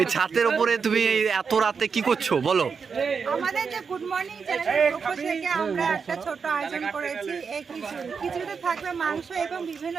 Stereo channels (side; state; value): left; quieter; 5.7 dB